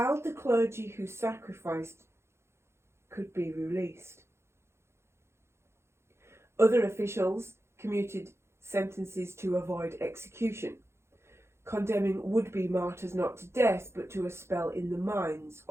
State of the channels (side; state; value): left; late; 0.13 ms